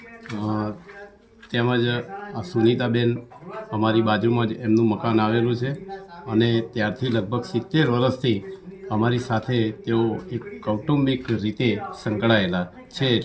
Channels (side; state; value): both; identical; correlation 1.00